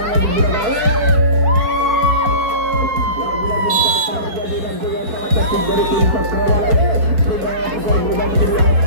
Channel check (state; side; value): late; left; 4.2 ms